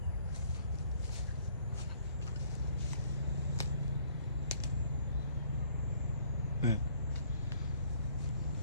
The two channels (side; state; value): both; inverted; correlation -0.61